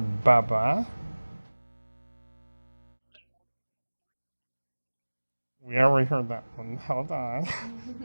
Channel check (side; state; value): both; inverted; correlation -1.00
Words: Bubba. Sound frequency. We already heard that one. Hold on.